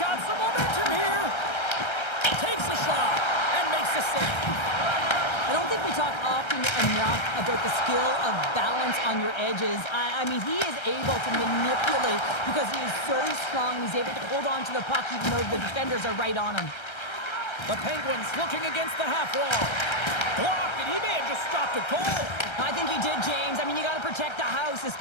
some momentum here. Takes a shot and makes a save. I don't think we talk often enough about the skill of balance on your edges. I mean, he is able to manipulate because he is so strong. He's able to hold on to the puck even though the defenders are right on him. The Penguins looking against the half wall. Blocked, and he may have just stopped a goal. I think he did, James. I mean, you got to protect the house,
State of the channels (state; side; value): late; right; 1.3 ms